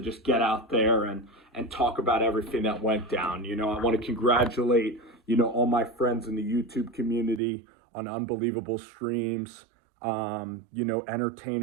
get out there and talk about everything that went down. I want to congratulate all my friends in the YouTube community on unbelievable streams.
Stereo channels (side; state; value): left; drops out; at 7.4 s